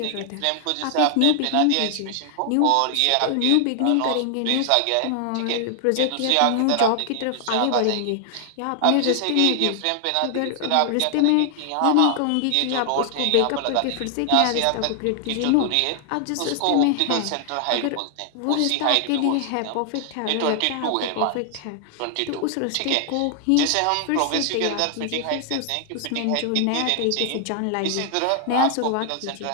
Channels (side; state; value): both; different; correlation 0.00